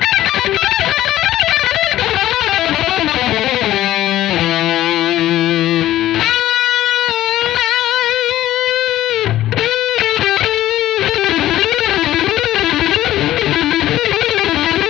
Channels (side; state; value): right; quieter; 14.1 dB